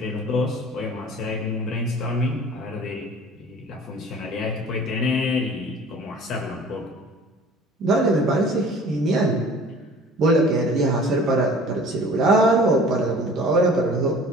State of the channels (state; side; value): normal; both; correlation 0.46